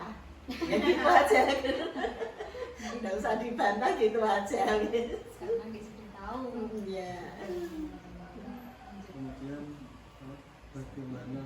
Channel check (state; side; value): identical; both; correlation 1.00